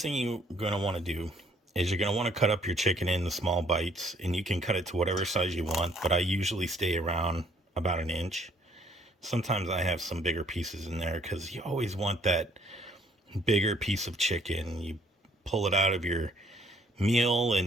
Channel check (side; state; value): both; normal; correlation 0.63